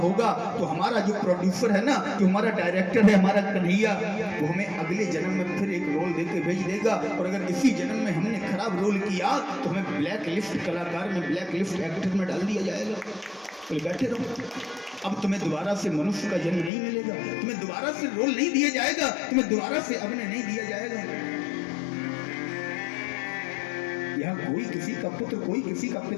तो हमारा जो प्रोड्यूसर है ना, जो हमारा डायरेक्टर है, हमारा कन्हैया, वो हमें अगले जन्म में फिर एक रोल देके भेज देगा। और अगर इसी जन्म में हमने खराब रोल किया तो हमें ब्लैक लिस्ट कलाकार में, ब्लैक लिस्ट एक्टर में डाल दिया जाएगा। तो बैठे रहो, अब तुम्हें दोबारा से मनुष्य का जन्म नहीं मिलेगा, तुम्हें दोबारा से रोल नहीं दिया जाएगा, तुम्हें दोबारा से अभिनय नहीं दिया जाएगा। यहाँ कोई किसी का पुत्र, कोई किसी का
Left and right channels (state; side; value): drops out; right; at 16.7 s